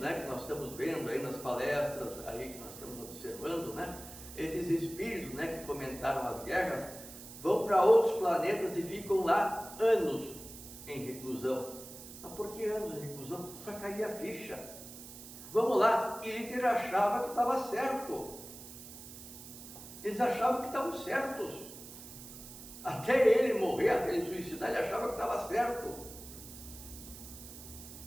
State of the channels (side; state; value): right; noise; hiss, 14 dB below the sound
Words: que nós estamos vendo aí, nas palestras aí que nós estamos observando, né, esses espíritos, né, que fomentaram as guerras, vão para outros planetas e ficam lá anos em reclusão. Mas por que anos em reclusão? Para cair a ficha. Vamos lá, e Hitler achava que estava certo. Eles achavam que estavam certos. Até ele morrer, até ele suicidar, ele achava que estava certo.